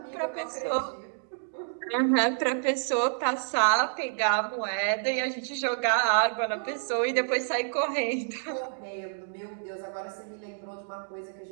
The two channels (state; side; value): silent; left; digital silence